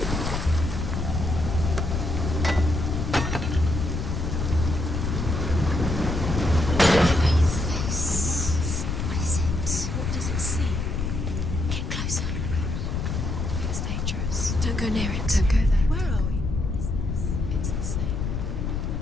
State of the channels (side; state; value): left; noise; rumble, 2 dB below the sound